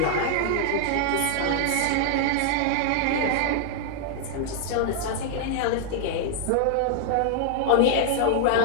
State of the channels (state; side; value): different; both; correlation -0.01